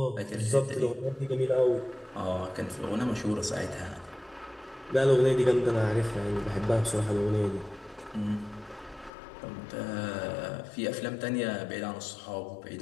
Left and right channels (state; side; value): drops out; right; at 9.1 s